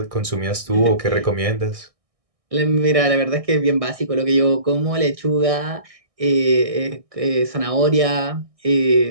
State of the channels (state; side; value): late; left; 1.6 ms